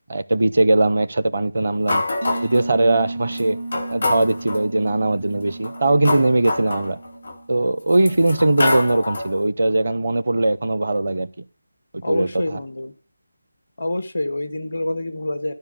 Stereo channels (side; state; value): both; inverted; correlation -0.95